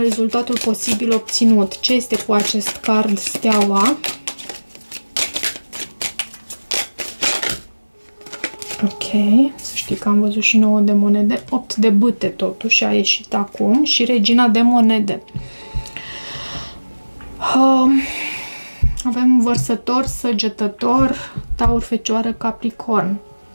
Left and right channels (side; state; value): both; inverted; correlation -1.00